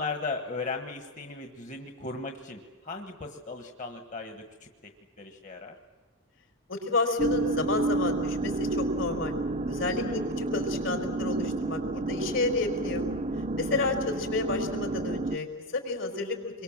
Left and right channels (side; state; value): both; normal; correlation 0.15